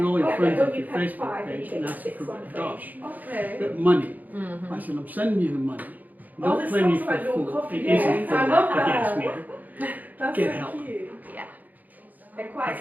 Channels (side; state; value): left; late; 0.082 ms